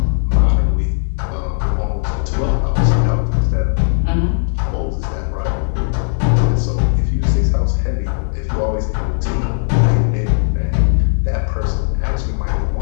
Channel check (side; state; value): right; silent; 68 dB below the other